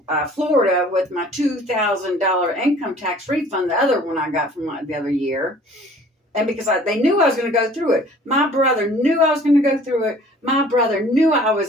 Florida with my $2,000 income tax refund, the other one I got from the other year. And because they knew I was going to go through it. My brother knew I was going to go through it. My brother knew I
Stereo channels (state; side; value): normal; both; correlation 0.51